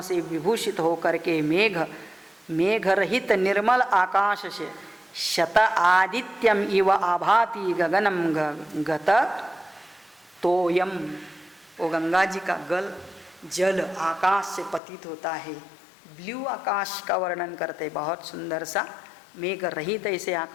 से विभूषित होकर के मेघ रहित निर्मल आकाश से शत आदित्यम इव आभाति गगनम गत तोयम, वो गंगा जी का जल आकाश से पतित होता है। ब्लू आकाश का वर्णन करते, बहुत सुंदर सा मेघ रहित ऐसे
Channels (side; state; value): right; drops out; at 14.8 s